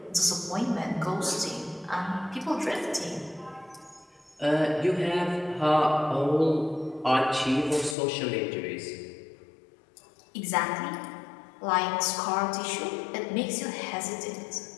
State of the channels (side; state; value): right; drops out; at 8.0 s